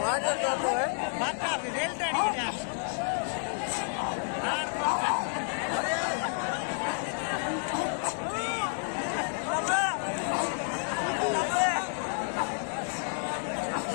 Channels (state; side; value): silent; right; 58 dB below the other